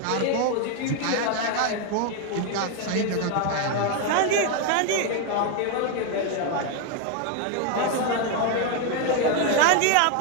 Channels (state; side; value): different; both; correlation 0.01